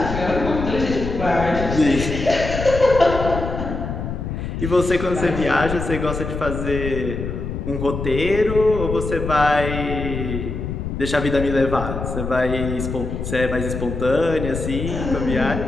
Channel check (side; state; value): left; noise; rumble, 5 dB below the sound